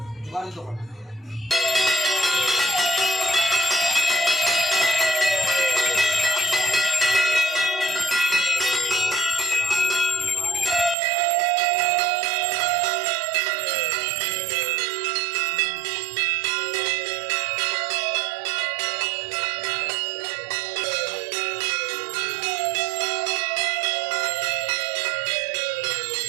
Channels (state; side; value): drops out; left; at 11.0 s